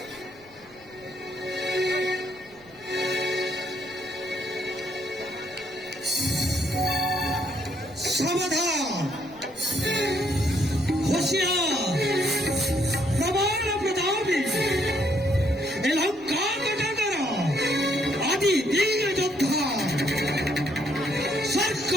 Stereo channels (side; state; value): left; noise; rumble, 27 dB below the sound